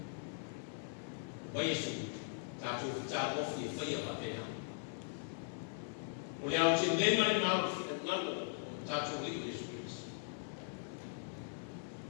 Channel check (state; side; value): silent; right; digital silence